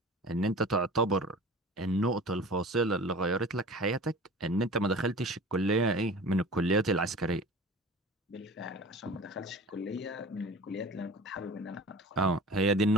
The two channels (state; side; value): normal; both; correlation 0.39